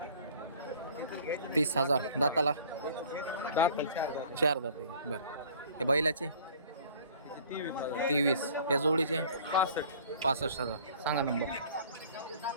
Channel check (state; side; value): inverted; both; correlation -0.50